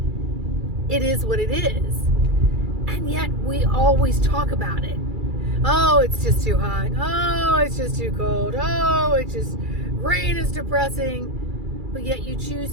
It is what it is. And yet we always talk about it. Oh, it's just too hot. Oh, it's just too cold. Oh, it's just, rain is depressing. But yet you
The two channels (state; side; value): late; left; 2.3 ms